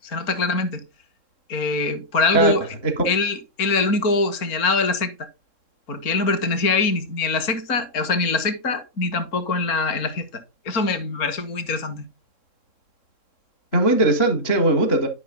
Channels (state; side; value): late; right; 3.7 ms